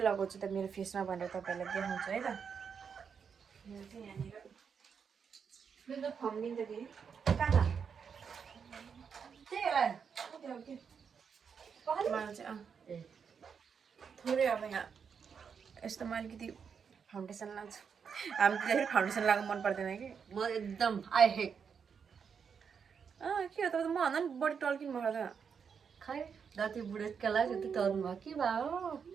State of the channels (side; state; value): left; quieter; 6.5 dB